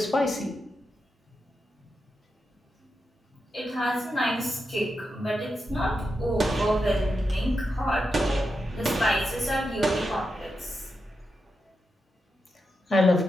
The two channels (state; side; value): normal; both; correlation 0.87